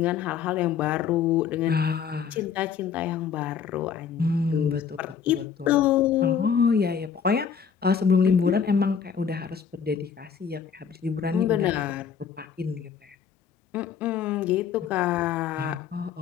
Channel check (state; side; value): quieter; right; 7.1 dB